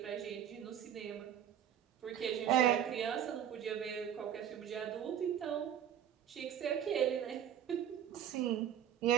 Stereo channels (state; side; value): quieter; left; 9.6 dB